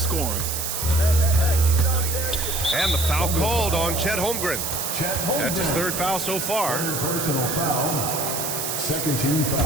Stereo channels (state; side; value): noise; right; hiss, 3 dB below the sound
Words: And the foul called on Chet Holmgren. That's his 3rd foul so far. Personal foul. Second team